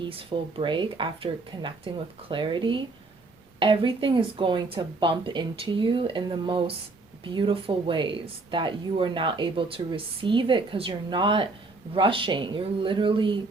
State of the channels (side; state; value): left; quieter; 3.5 dB